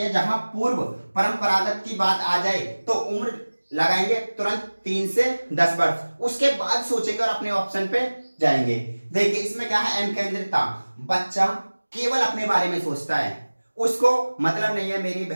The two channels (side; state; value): both; inverted; correlation -1.00